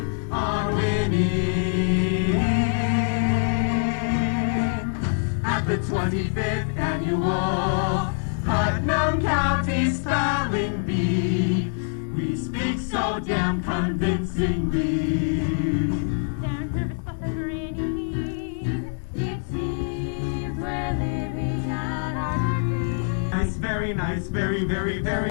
on winning. At the 25th Annual Putnam County Spelling Bee, we speak so damn convincingly. They're nervous but they're grinning. It seems we're living out our dreams. Nice, very nice, very, very, very,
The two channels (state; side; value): silent; right; digital silence